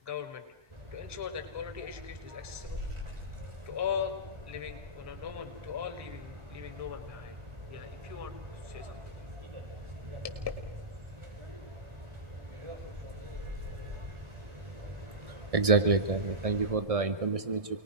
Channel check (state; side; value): late; left; 1.6 ms